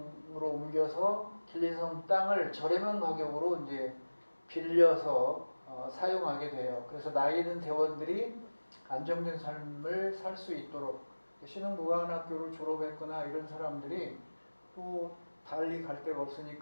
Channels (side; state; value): both; inverted; correlation -1.00